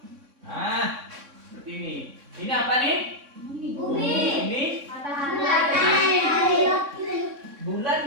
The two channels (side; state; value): left; late; 3.6 ms